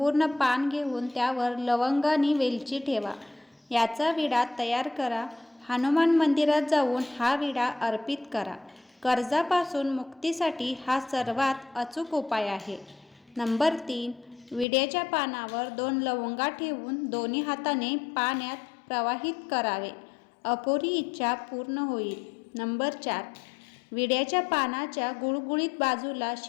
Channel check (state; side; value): drops out; right; at 14.7 s